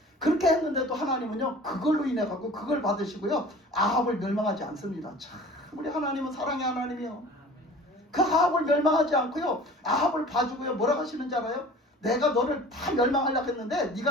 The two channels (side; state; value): both; normal; correlation 0.43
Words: 그렇게 했는데도 하나님은요 그걸로 인해 갖고 그걸 받으시고요 아합을 멸망하지 않습니다. 참 우리 하나님은 사랑의 하나님이요. 그 아합을 멸망하지 않고요 아합을 봐주고요 뭐라고 하시는지 알아요? 내가 너를 다 멸망하려고 했는데